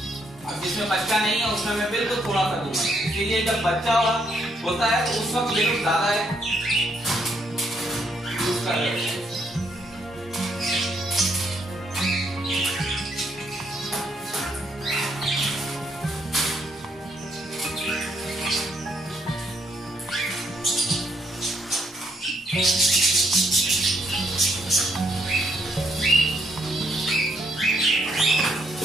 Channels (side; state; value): both; normal; correlation 0.73